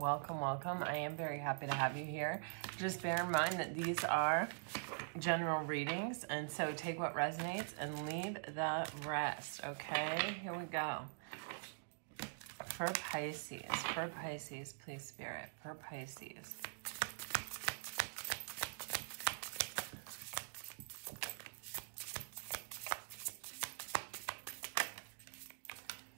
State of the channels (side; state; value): left; silent; digital silence